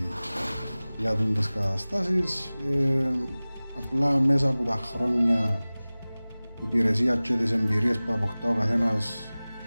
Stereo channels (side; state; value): both; inverted; correlation -0.99